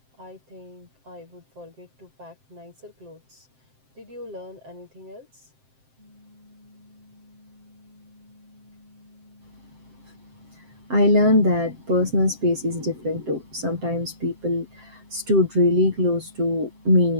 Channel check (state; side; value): late; left; 7.6 ms